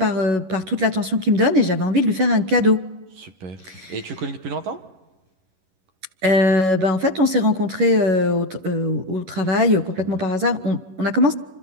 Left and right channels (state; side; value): late; left; 11 ms